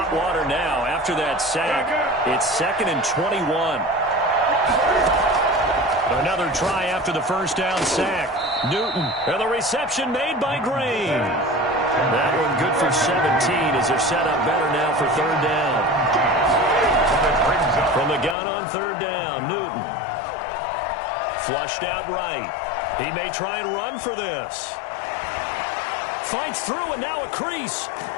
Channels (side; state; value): right; drops out; at 18.4 s